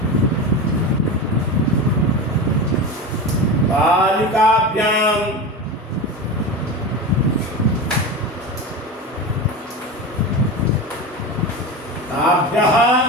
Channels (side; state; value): both; normal; correlation 0.24